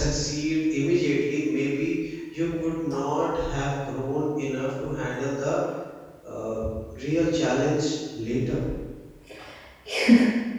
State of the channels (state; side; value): identical; both; correlation 1.00